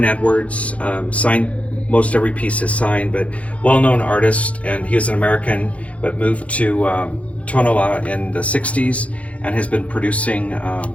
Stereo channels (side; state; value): right; late; 0.064 ms